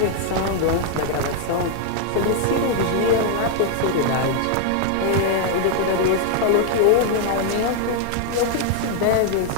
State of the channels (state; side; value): different; both; correlation 0.00